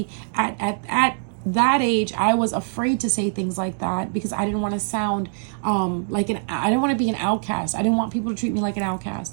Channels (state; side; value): silent; left; 63 dB below the other